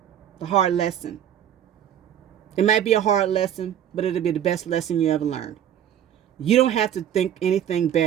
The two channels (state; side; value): quieter; left; 10.1 dB